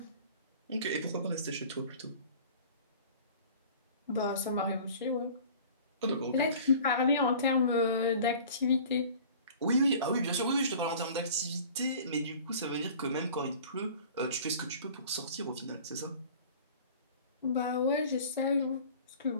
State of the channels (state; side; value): inverted; both; correlation -0.45